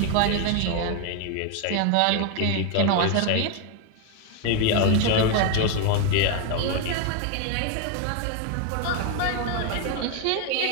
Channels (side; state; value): both; different; correlation 0.01